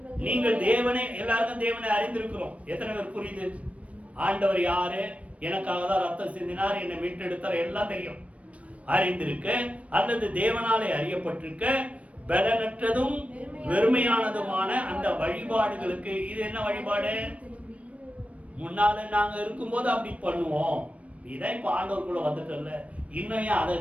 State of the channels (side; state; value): left; late; 0.065 ms